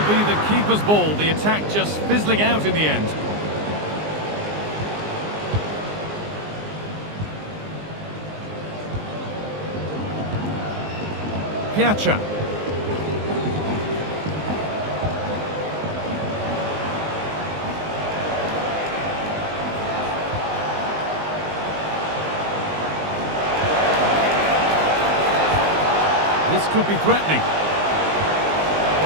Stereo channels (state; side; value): late; left; 19 ms